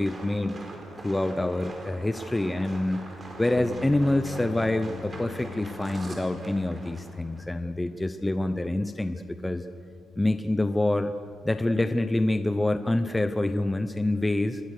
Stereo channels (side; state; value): both; normal; correlation 0.97